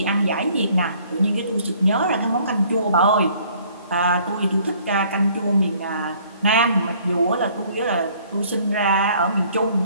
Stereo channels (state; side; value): inverted; both; correlation -0.59